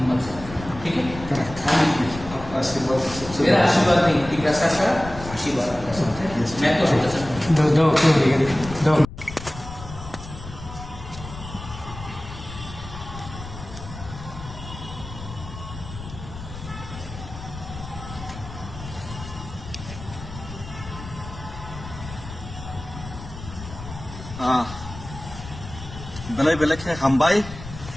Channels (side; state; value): left; noise; rumble, 12 dB below the sound